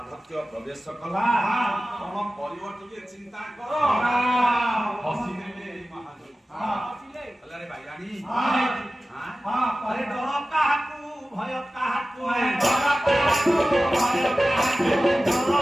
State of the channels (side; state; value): both; normal; correlation 0.96